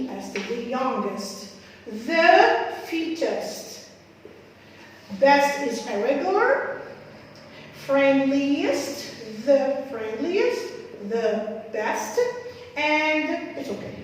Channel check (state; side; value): identical; both; correlation 1.00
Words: the youngest, the fittest. Best is irregular, friendliest, the friendliest, the best, and it's okay